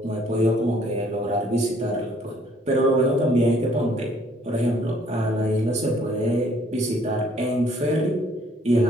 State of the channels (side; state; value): both; normal; correlation 0.62